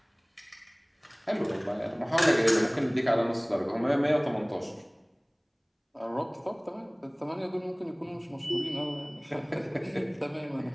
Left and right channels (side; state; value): both; identical; correlation 1.00